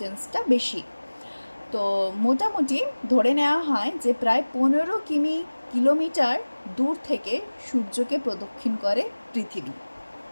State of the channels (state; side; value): inverted; both; correlation -1.00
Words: বেশি। তো মোটামুটি ধরে নেওয়া হয় যে প্রায় 15 কিলোমিটার দূর থেকে সূর্যকে প্রদক্ষিণ করে পৃথিবী।